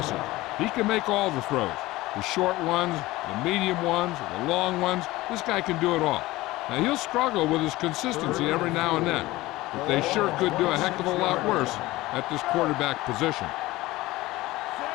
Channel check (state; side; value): quieter; right; 18.6 dB